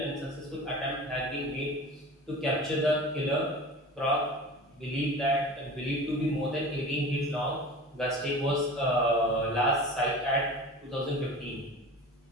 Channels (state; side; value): normal; both; correlation 0.36